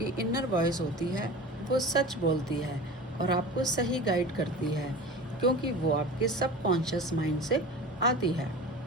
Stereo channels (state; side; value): normal; both; correlation 0.35